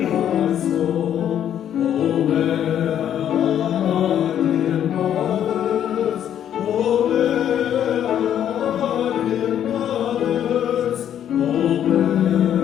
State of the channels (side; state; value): right; quieter; 10.1 dB